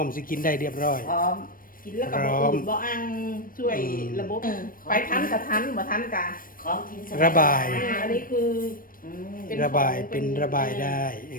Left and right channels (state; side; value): late; right; 0.41 ms